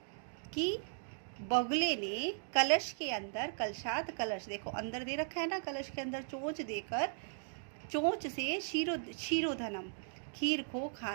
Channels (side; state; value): left; silent; digital silence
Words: की बगुले ने कलश के अंदर, कलशात कलश देखो अंदर दे रखा है ना, कलश के अंदर चोंच देकर चोंच से क्षीरोधनम खीर को